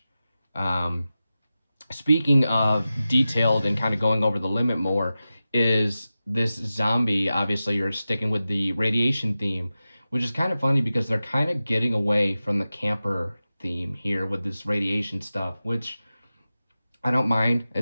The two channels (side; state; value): both; inverted; correlation -0.94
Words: Speaking of detailed and kind of going over the limit more, is this zombie, obviously you're sticking with the radiation theme, which is kind of funny because they're kind of getting away from the camper theme here with this radiation stuff, which I don't mind.